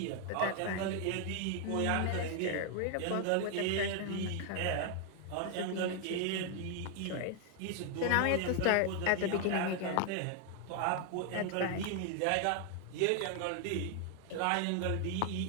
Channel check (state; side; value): different; both; correlation 0.00